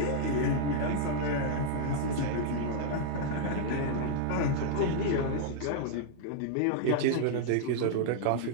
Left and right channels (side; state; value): both; different; correlation -0.01